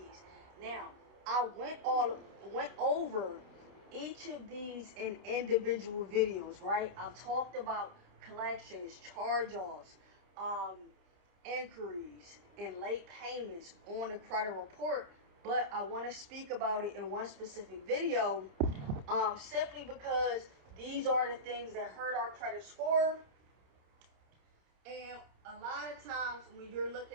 Now, I went over each of these in individual videos, right? I've talked about collections, charge-offs, inquiries and late payments on the credit report, but I want to speak about it in one specific video, simply because these are the things that hurt our credit score. And a lot of times when you're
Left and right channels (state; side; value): late; left; 29 ms